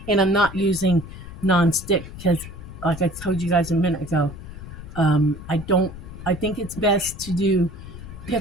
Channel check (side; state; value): left; noise; rumble, 13 dB below the sound